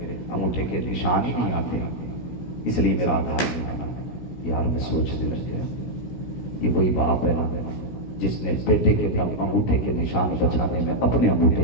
انگوٹھے کے نشان ہی نہیں آتے اس لیے میرا آدھار نہیں بنا. یار میں سوچنے لگ گیا یہ وہی باپ ہے نا جس نے بیٹے کے انگوٹھے کے نشان بچانے میں اپنے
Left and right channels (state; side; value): late; right; 17 ms